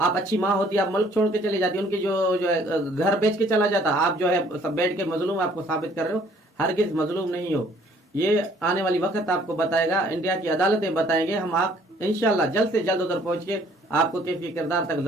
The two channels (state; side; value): normal; both; correlation 0.59